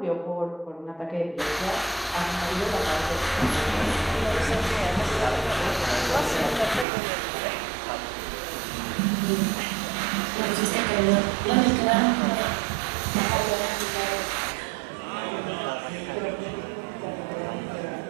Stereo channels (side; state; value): left; drops out; at 6.9 s